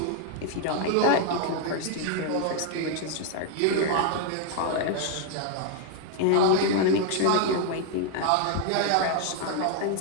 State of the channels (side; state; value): both; different; correlation 0.00